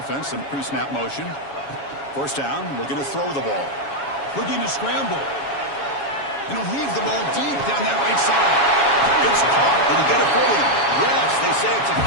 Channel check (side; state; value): right; late; 7.2 ms